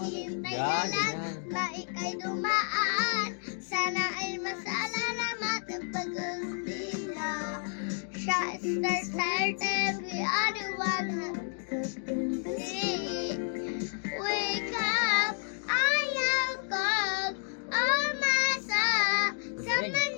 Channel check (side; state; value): right; silent; 57 dB below the other